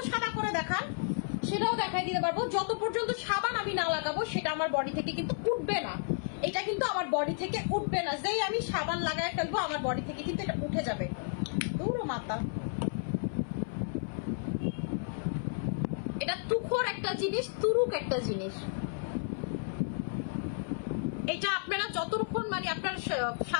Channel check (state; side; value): silent; right; 56 dB below the other